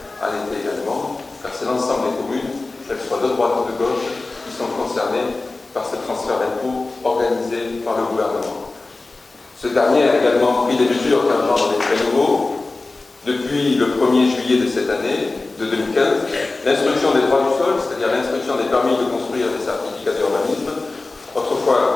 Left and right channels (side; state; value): right; quieter; 3.3 dB